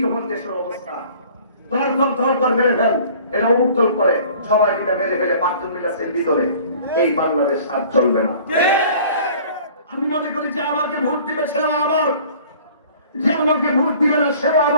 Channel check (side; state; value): both; inverted; correlation -0.50